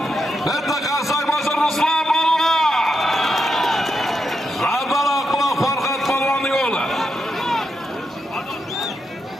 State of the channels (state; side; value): normal; both; correlation 0.84